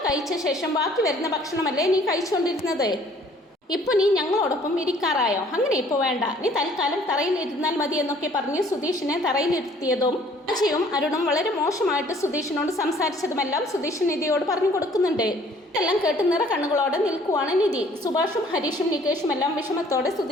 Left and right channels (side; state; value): both; normal; correlation 0.57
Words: കഴിച്ച ശേഷം ബാക്കി വരുന്ന ഭക്ഷണമല്ലേ നീ കഴിച്ചുകൊണ്ടിരുന്നത്? ഇപ്പോൾ നീ ഞങ്ങളോടൊപ്പം ഇരിക്കാറായോ? അങ്ങനെ ഇപ്പോൾ വേണ്ട, നീ തൽക്കാലം തറയിൽ ഇരുന്നാൽ മതി എന്നൊക്കെ പറഞ്ഞ് സുധീഷിനെ തറയിലിരുത്തിയതും അജയും അരുണും വളരെ മോശമായിട്ട് സുധീഷിനോട് സംസാരിച്ചതുമെല്ലാം സുധീഷ് നിധിയോട് പറഞ്ഞു കൊടുക്കുന്നുണ്ട്. ഇതെല്ലാം കേട്ട് നിറ കണ്ണുകളോടെ നിൽക്കുവാണ് നിധി. സുഭാഷും ഹരീഷും നികേഷും എല്ലാം വിഷമത്തോടെ